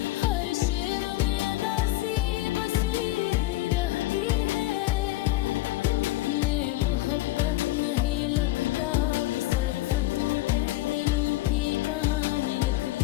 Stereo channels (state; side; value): quieter; right; 17.5 dB